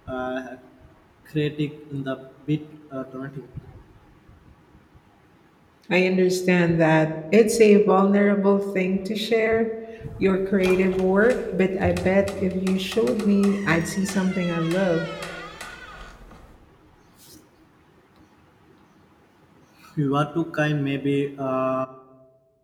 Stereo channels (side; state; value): both; identical; correlation 1.00